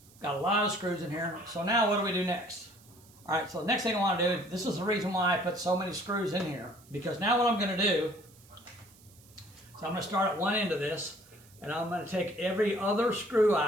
Got a lot of screws in here. So now what do we do next? Alright, so the next thing I want to do, this is the reason why I put so many screws in here, because now what I'm going to do, so I'm going to start at one end of this, and I'm going to take every other screw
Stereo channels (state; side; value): noise; right; hiss, 26 dB below the sound